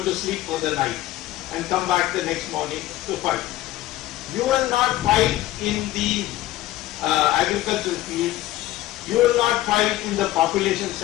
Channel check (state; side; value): quieter; right; 15.6 dB